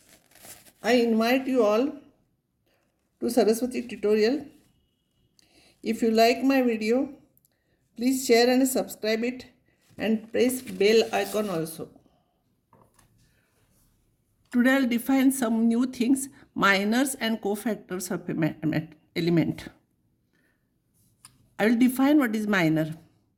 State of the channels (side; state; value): both; identical; correlation 1.00